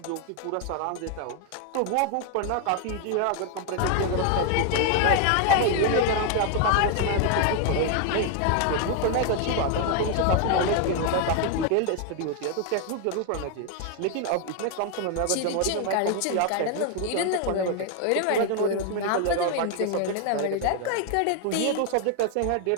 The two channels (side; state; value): both; different; correlation 0.01